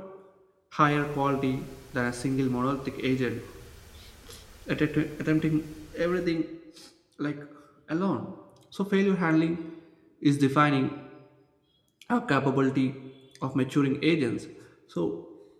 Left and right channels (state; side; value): identical; both; correlation 1.00